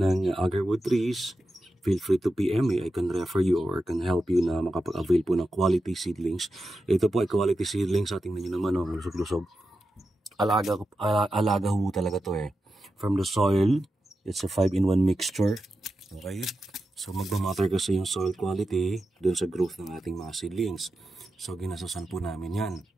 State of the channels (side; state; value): both; normal; correlation 0.90